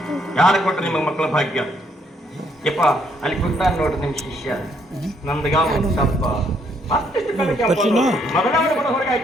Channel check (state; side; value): normal; both; correlation 0.70